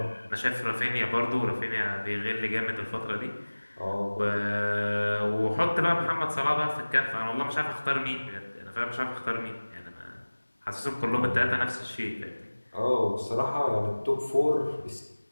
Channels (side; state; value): both; inverted; correlation -1.00